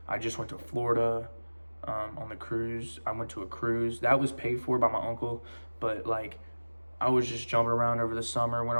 I just went to Florida on the cruise. I went to a cruise. That was paid for by my uncle, but like I was just jumping around over the summer, went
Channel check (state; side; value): inverted; both; correlation -1.00